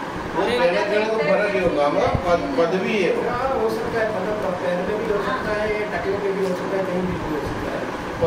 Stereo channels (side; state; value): both; identical; correlation 1.00